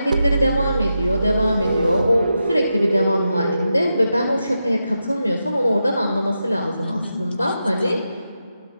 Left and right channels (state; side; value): inverted; both; correlation -0.88